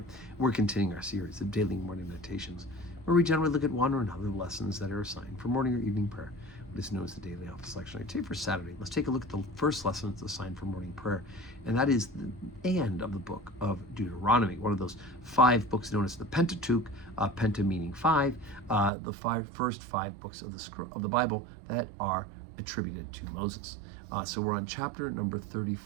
We're continuing our series of daily morning meditations, where we generally look at one or another lessons that are assigned for morning or evening prayer, what is known as the daily office lectionary. Today for Saturday, let's take a look at the first lesson that's assigned for morning prayer, and that is the end of the book of Deuteronomy, one of those 5 books known as the Pentateuch, penta meaning 5, the first 5 books of the Bible that are attributed to Moses. So we're on chapter number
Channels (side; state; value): left; drops out; at 18.9 s